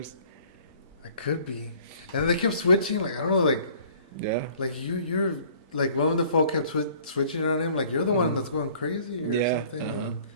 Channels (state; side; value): inverted; both; correlation -0.54